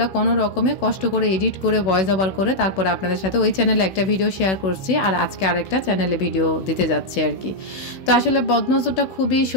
কোনো রকমে কষ্ট করে এডিট করে ভয়েস ওভার করে তারপর আপনাদের সাথে ওই চ্যানেলে একটা ভিডিও শেয়ার করছি, আর আজকে আরেকটা চ্যানেলে ভিডিও দিতে যাচ্ছি আর কি। তো আসলে বদনজরটা খুবই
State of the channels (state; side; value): late; right; 16 ms